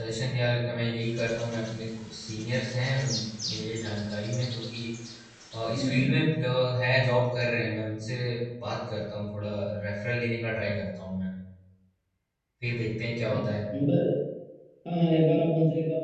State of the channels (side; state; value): both; identical; correlation 1.00